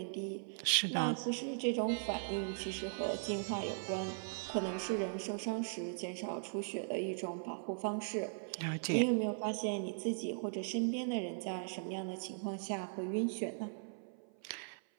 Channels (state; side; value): silent; left; 52 dB below the other